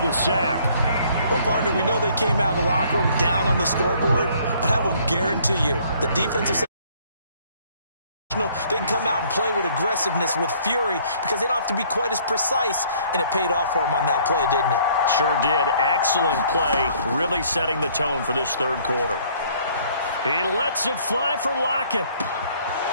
sack. Well, partner, we know they came out of the locker room down on the scoreboard, but I will guarantee you the defensive they can come out and play with aggressiveness, with fury, because they don't have to be quite as precise, and it paid off for them on that play, didn't it? Sure did. Excellent play, really setting the tone for this 3rd quarter. He lets it fly for Lockett.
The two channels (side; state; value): both; inverted; correlation -0.60